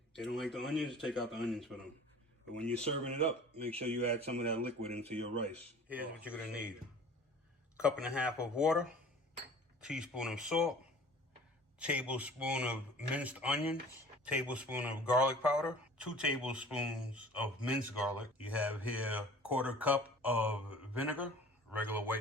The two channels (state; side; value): normal; both; correlation 0.45